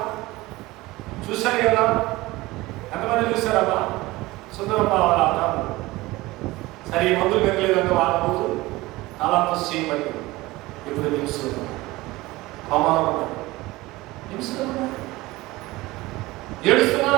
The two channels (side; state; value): left; quieter; 19.8 dB